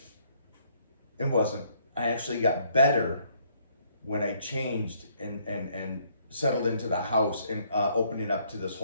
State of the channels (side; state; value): both; inverted; correlation -0.67